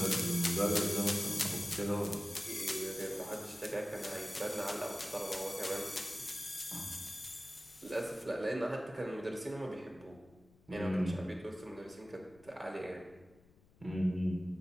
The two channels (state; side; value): noise; left; rumble, 28 dB below the sound